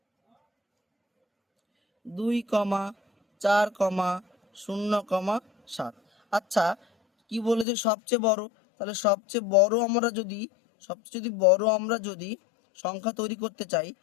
2,4,0,7। আচ্ছা কি বলেছে সবচেয়ে বড়, তাহলে সবচেয়ে বড় আমরা যদি সংখ্যা তৈরি করতে চাই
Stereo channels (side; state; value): right; drops out; at 7.7 s